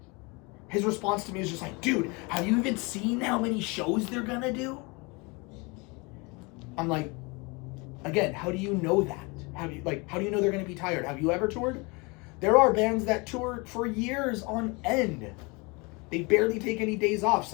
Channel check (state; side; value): quieter; right; 28.0 dB